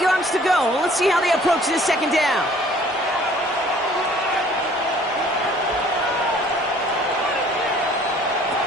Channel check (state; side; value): normal; both; correlation 0.54